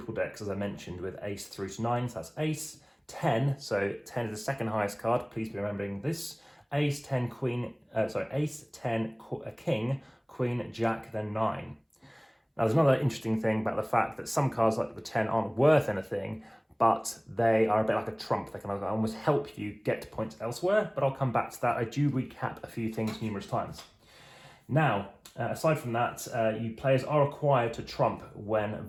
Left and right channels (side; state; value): both; identical; correlation 1.00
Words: decks, as I mentioned, with ace through to 9. So that's ace, 10. So 10 is the second highest card. Please be remembering this. Ace, 10, queen, ace, 10, a king, queen, jack, then 9. Now, there's another interesting thing about the fact that some cards like the 10 aren't worth anything, but they are a bit like a trump. They can almost help you get points elsewhere, but I'll come back to that. I do recap a few things numerous times. Now, aside from that, you players are required to trump when